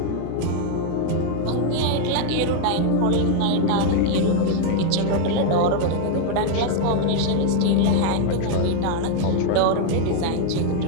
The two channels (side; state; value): both; different; correlation 0.00